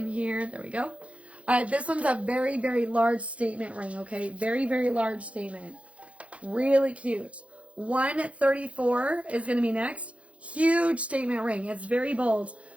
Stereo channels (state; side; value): late; left; 0.063 ms